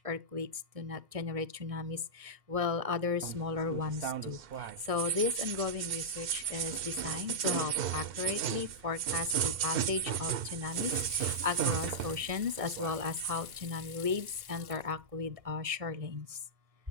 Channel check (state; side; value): late; left; 1.6 ms